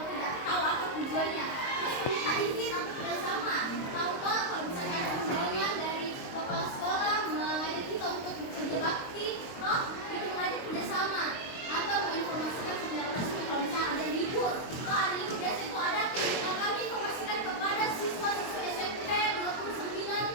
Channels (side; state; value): right; late; 22 ms